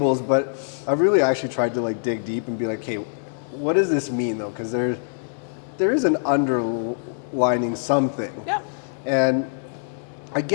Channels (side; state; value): right; silent; digital silence